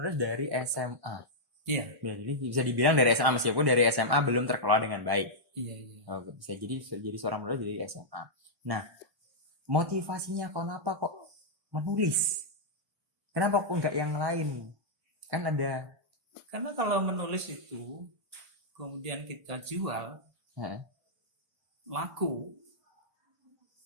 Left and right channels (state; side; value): late; left; 1.1 ms